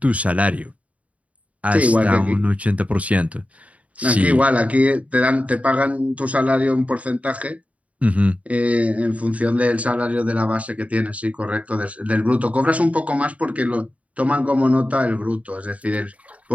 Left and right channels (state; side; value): late; left; 0.067 ms